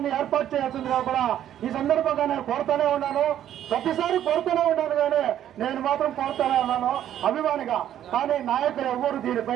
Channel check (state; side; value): quieter; left; 11.1 dB